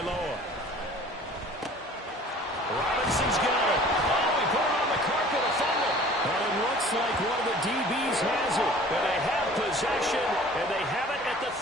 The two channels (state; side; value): normal; both; correlation 0.48